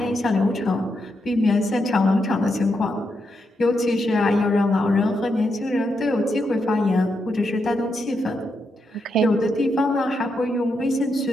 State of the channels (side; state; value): both; normal; correlation 0.83